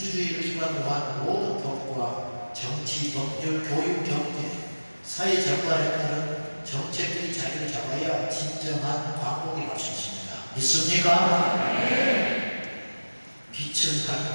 기반으로 한 모든 법과 정치, 법률, 교육, 경제, 사회 전반에 따른 정책들이 자리를 잡아야 진정한 광복이 갈 수 있습니다. 믿습니까? 빛은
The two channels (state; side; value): inverted; both; correlation -1.00